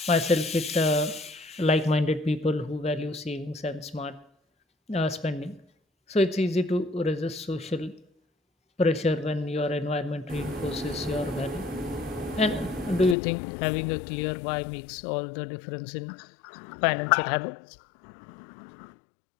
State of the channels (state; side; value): drops out; right; at 13.2 s